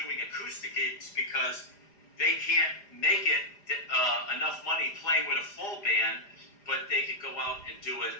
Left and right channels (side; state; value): right; late; 5.0 ms